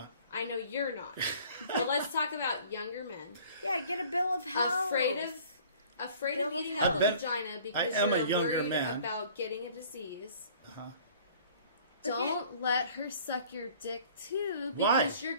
I know you're not. But let's talk about younger men Yeah, get a bill of health. afraid Bill of of eating health. out of I've been- vagina because I am you're a younger worried man. about getting a disease. Uh-huh. Don't let her suck your dick too, Why? because you're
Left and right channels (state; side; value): inverted; both; correlation -0.51